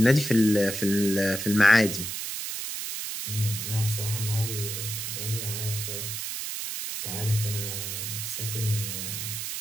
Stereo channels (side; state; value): right; noise; hiss, 5 dB below the sound